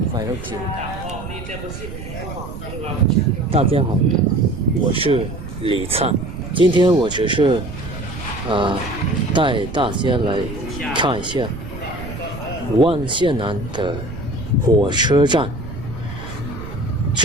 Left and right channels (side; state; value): right; noise; rumble, 10 dB below the sound